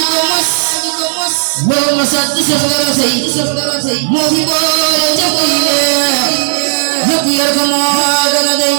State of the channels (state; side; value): silent; left; digital silence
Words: ko mos boo ma sat saf dara sey moo fi boole jàpp yi ñëpp yor ko moo gën a dey